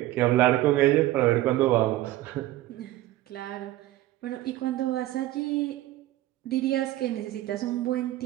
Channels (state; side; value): quieter; left; 15.7 dB